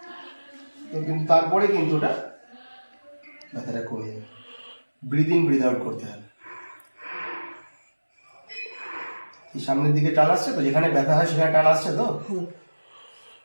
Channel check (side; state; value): both; inverted; correlation -1.00